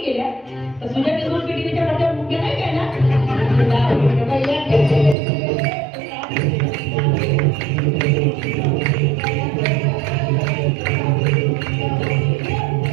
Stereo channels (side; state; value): left; drops out; at 5.2 s